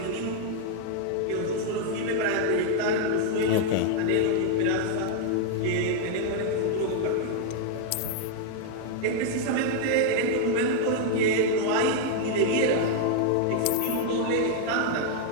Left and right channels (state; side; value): different; both; correlation 0.00